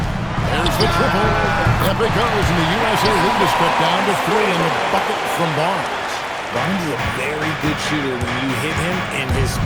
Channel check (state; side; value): identical; both; correlation 1.00